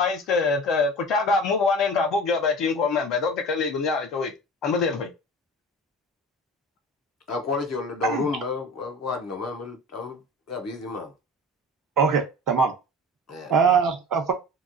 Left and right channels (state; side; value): normal; both; correlation 0.36